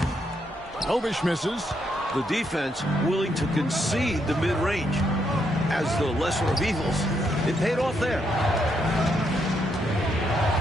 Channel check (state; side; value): normal; both; correlation 0.77